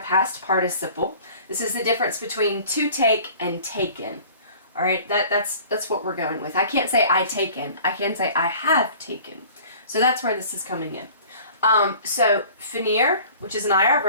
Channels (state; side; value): inverted; both; correlation -0.47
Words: participle. This is the difference between to take and taken. All right, that's what we're going with. I can't say I taken. I can say I have taken. So that's where this is coming in. So finir, which is an IR